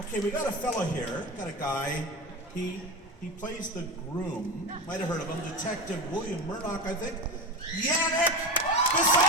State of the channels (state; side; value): normal; both; correlation 0.23